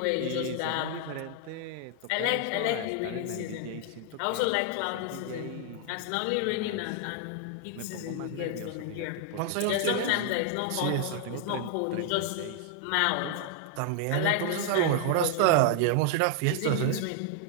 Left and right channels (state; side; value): different; both; correlation 0.00